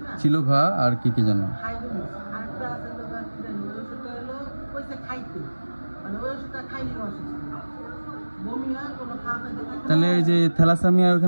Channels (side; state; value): both; inverted; correlation -1.00